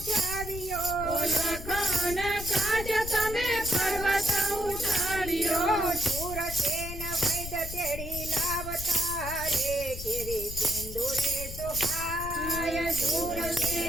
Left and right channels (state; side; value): noise; left; rumble, 9 dB below the sound